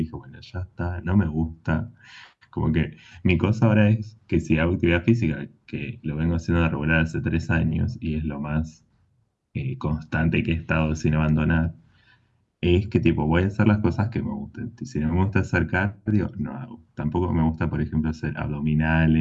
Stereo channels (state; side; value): identical; both; correlation 1.00